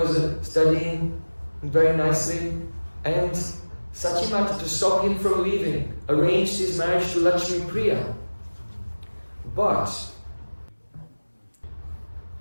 studying very nicely, and Sachimata, to stop him from leaving, arranged his marriage to Lakshmi Priya. But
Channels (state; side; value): inverted; both; correlation -1.00